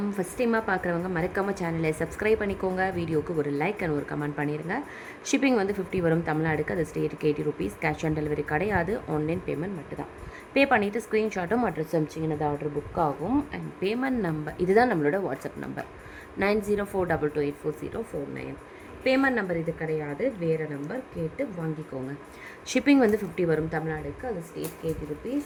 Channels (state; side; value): identical; both; correlation 1.00